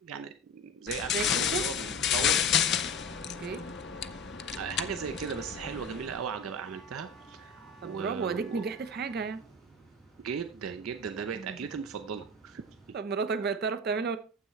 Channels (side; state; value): both; normal; correlation 0.30